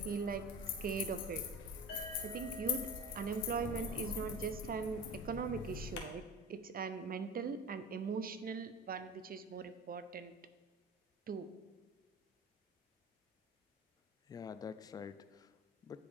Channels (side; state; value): both; normal; correlation 0.33